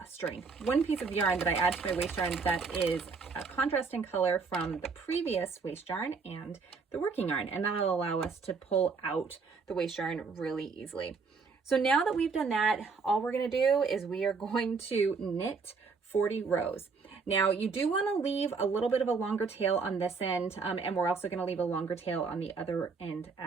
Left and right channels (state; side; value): quieter; left; 4.8 dB